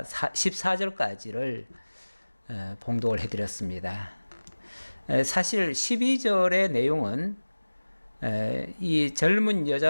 14절까지를 봉독을 해드렸습니다. 사실 12절의 내용은 이 젊은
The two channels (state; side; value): inverted; both; correlation -1.00